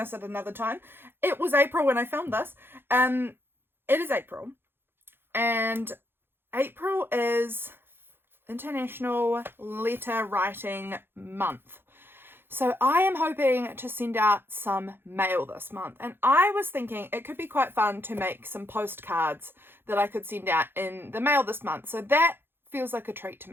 at another time. It was April when I filmed this. It is April, and April is International Letter Writing Month. So I am hoping to send out some mail this month, and I was thinking it could be quite fun to make some postcards that I could send out in the mail this month. So that feels like a treat to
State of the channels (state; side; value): late; left; 0.10 ms